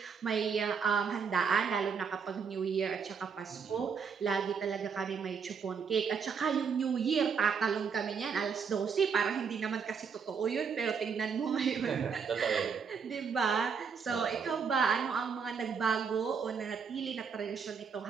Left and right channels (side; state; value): left; quieter; 6.1 dB